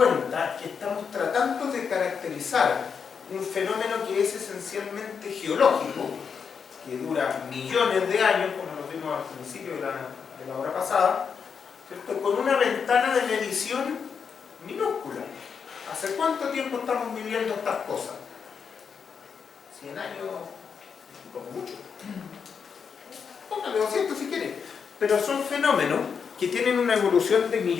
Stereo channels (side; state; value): right; quieter; 6.4 dB